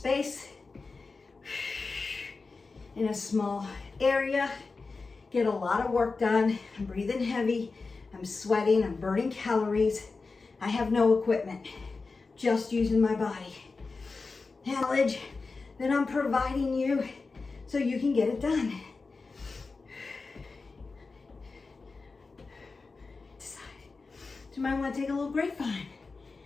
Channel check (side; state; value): right; quieter; 4.1 dB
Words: in a small area. Get a lot of work done. I'm breathing heavy. I'm sweating. I'm burning calories. I have no equipment, just using my body. Knowledge that I'm providing you so you can get it done. You might want to take a little grapevine.